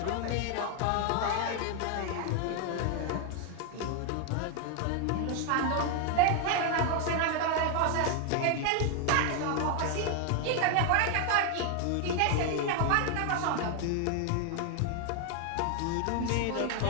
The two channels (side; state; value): both; different; correlation 0.01